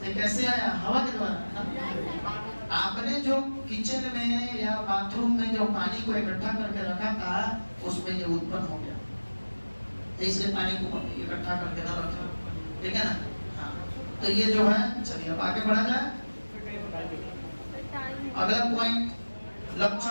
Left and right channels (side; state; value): both; inverted; correlation -1.00